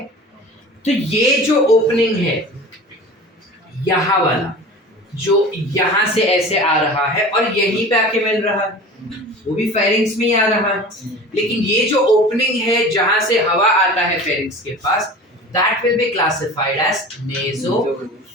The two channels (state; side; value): normal; both; correlation 0.38